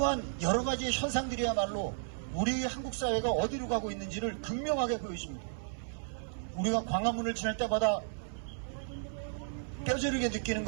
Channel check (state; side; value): silent; left; 55 dB below the other